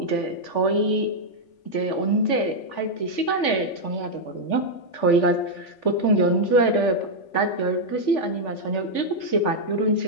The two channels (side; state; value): right; late; 3.4 ms